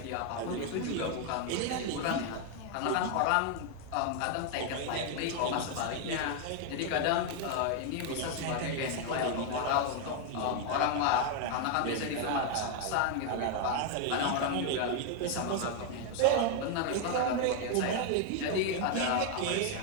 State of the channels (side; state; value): both; different; correlation 0.00